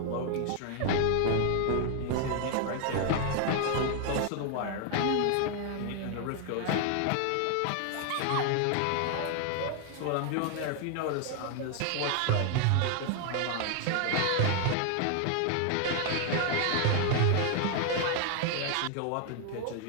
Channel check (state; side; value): different; both; correlation 0.01